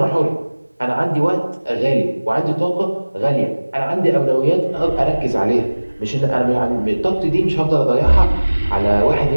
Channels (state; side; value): inverted; both; correlation -1.00